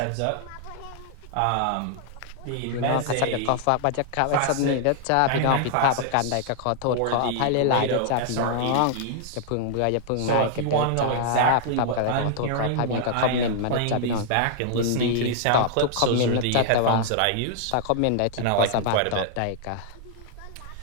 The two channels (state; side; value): different; both; correlation -0.01